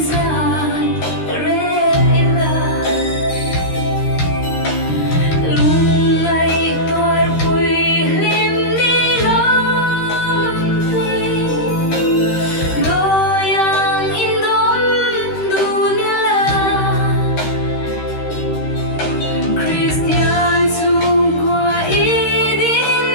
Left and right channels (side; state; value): right; late; 13 ms